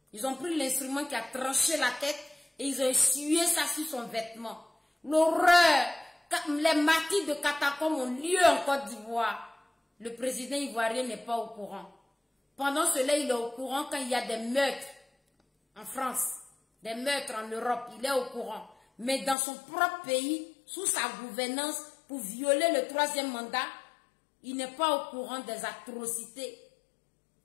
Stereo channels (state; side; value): drops out; right; at 19.4 s